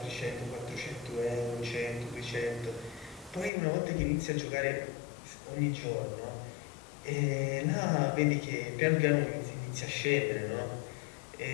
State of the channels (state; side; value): drops out; right; at 3.5 s